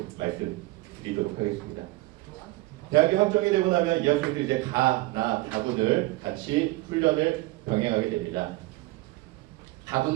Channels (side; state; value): left; quieter; 19.9 dB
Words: 말씀드리도록 하겠습니다. 대학이 확정이 되고 나면 이 학생들이 이제 다군을 같이 훈련을 병행하게 됩니다.